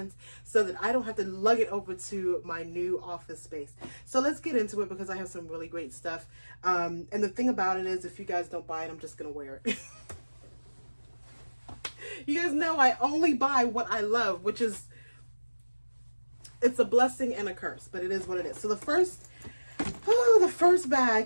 so that I don't have to lug it over to my new office space. So let's get into it because I have some really great stuff. And the thing about it is if you guys don't buy it, I'm just going to wear it. You guys know I only buy what I love, which is, it's a blessing and a curse, but it is what it is. So the first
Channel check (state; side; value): inverted; both; correlation -1.00